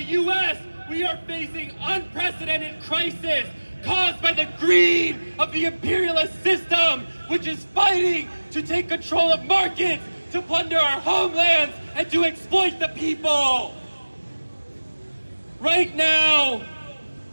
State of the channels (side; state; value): both; inverted; correlation -1.00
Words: US, we are facing unprecedented crisis caused by the greed of the imperialist system, which is fighting to take control of markets, to plunder our homelands, and to exploit the people. Right now,